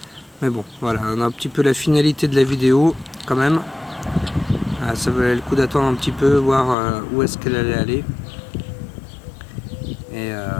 Mais bon, voilà, on a un petit peu la finalité de la vidéo quand même. Ça valait le coup d'attendre un petit peu, voir où est-ce qu'elle allait aller. Et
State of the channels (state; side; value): drops out; right; at 6.8 s